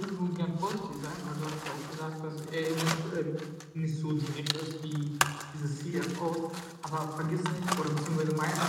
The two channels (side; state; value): both; identical; correlation 1.00